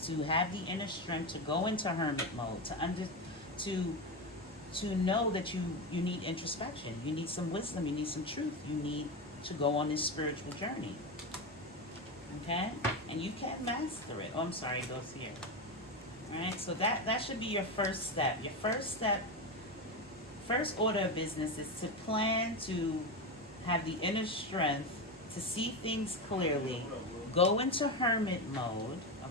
to have the inner strength to go into hermit mode, to know that you need introspection, you need some wisdom, you need some truth, you need to go on this spiritual journey. Okay? And you can master it. Oh, I'm sorry, it goes here. All right? So that should be your first step. Your first step, first order of business is to plan to have the inner strength to see things clearly, go into hermit mode,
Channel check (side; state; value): both; normal; correlation 0.15